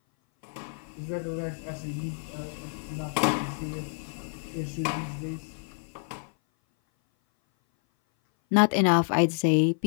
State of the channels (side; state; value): right; silent; 57 dB below the other